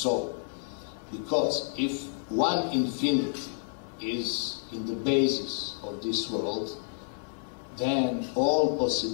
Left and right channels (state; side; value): silent; right; 58 dB below the other